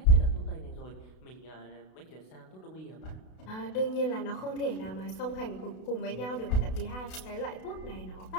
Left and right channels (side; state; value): right; late; 32 ms